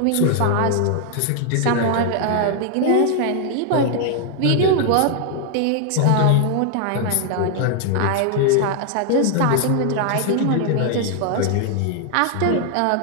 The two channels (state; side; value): different; both; correlation 0.00